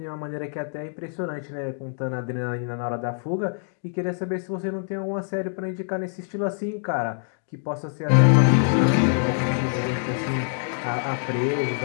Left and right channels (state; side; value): silent; right; digital silence